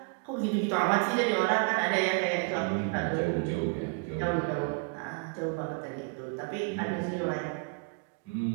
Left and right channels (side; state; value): left; quieter; 35.0 dB